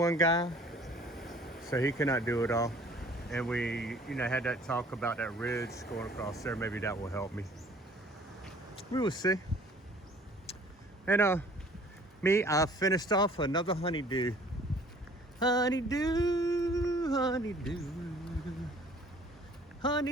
guy, so he cannot do it all. And we, you know, had that talk about that ridge going across there. Maybe that will help me. We will see. And I finished off another honeydew. Honeydew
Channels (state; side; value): normal; both; correlation 0.53